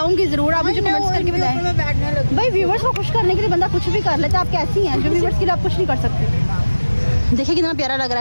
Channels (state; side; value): inverted; both; correlation -1.00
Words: जरूर, आप मुझे कमेंट्स करके बताएं। भाई व्यूवर्स को खुश करने के लिए बंदा कुछ भी कर लेता है। आप कैसी हैं जो व्यूवर्स के लिए आप कुछ नहीं कर सकते? देखिए कितना प्यारा लग